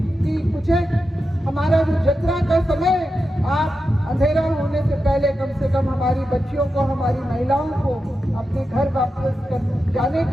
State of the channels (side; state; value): both; normal; correlation 0.89